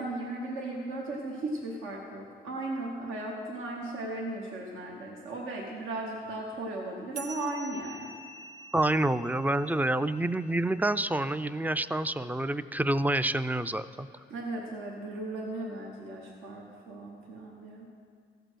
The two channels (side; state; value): both; normal; correlation 0.70